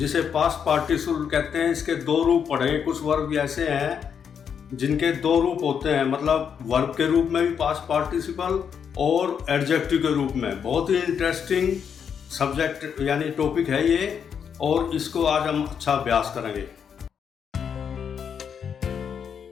पास्ट पार्टिसिपल कहते हैं, इसके दो रूप पढ़ेंगे। कुछ वर्ब ऐसे हैं जिनके दो रूप होते हैं, मतलब वर्ब के रूप में भी पास्ट पार्टिसिपल और एडजेक्टिव के रूप में। बहुत ही इंटरेस्टिंग सब्जेक्ट यानी टॉपिक है ये, और इसको आज हम अच्छा अभ्यास करेंगे।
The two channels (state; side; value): quieter; right; 7.4 dB